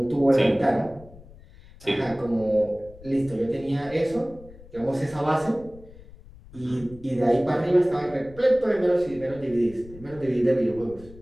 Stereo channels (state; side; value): noise; left; rumble, 20 dB below the sound